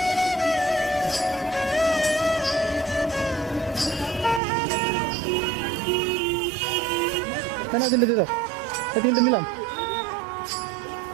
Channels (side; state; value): left; drops out; at 4.4 s